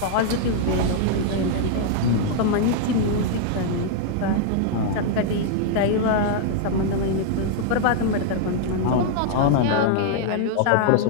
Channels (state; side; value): different; both; correlation 0.00